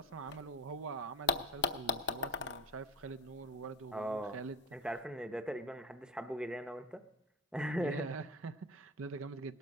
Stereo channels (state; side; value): normal; both; correlation 0.24